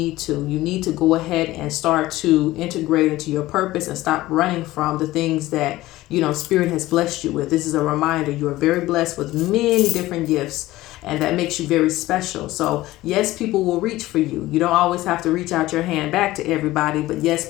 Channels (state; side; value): quieter; right; 17.1 dB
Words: to. You need to go ahead and start to integrate into your purpose and stop running from the things that Spirit has blessed you with. This is a reminder. You are very blessed with many different gifts, and that makes you very special. So yes, people will reach for you. You don't always have to reach out your hand back to everybody, but yes,